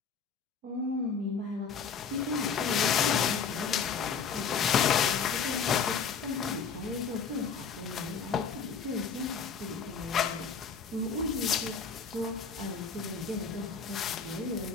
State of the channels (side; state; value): right; quieter; 6.1 dB